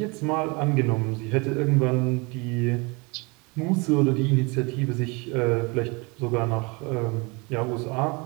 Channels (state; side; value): quieter; left; 28.4 dB